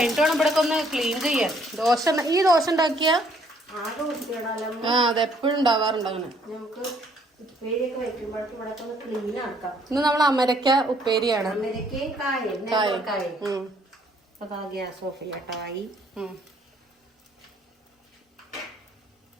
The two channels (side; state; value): both; normal; correlation 0.65